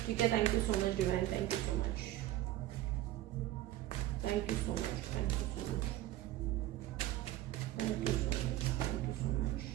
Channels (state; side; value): quieter; left; 14.7 dB